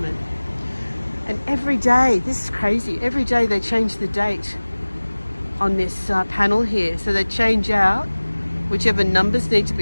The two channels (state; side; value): inverted; both; correlation -1.00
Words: And every day, this is crazy, every day they change the date on this panel here. So they change out whichever numbers need to